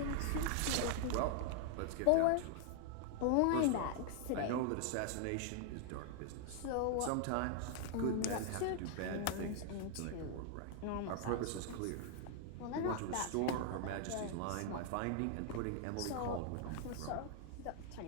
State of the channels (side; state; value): both; different; correlation 0.00